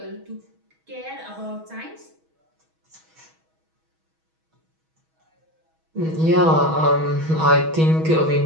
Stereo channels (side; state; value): left; late; 6.2 ms